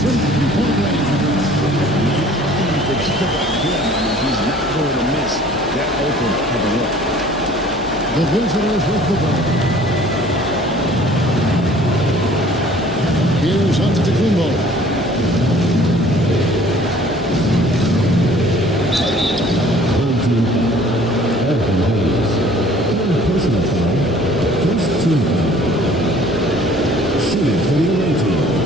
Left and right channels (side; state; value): both; normal; correlation 0.52